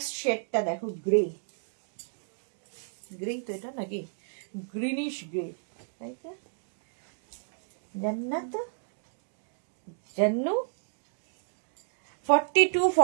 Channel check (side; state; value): left; silent; digital silence